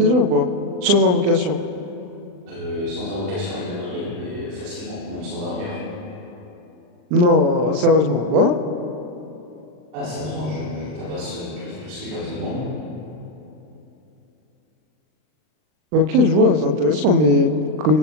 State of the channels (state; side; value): late; left; 39 ms